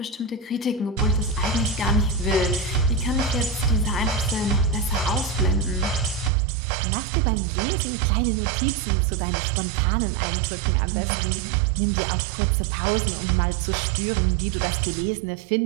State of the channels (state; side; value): drops out; left; at 6.3 s